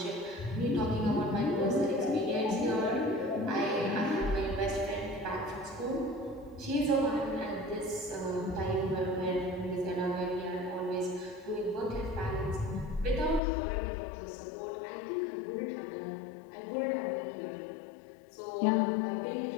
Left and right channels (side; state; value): right; drops out; at 13.4 s